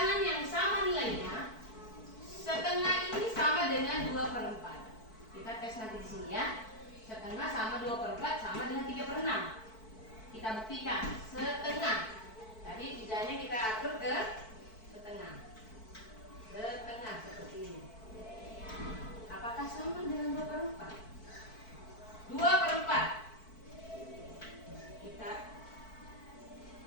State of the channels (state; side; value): late; right; 4.5 ms